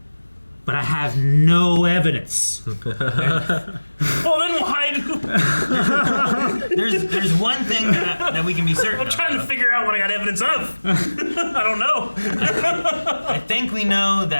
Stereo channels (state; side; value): inverted; both; correlation -1.00